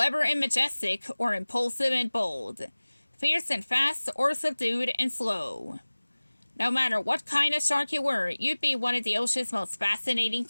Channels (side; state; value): both; inverted; correlation -1.00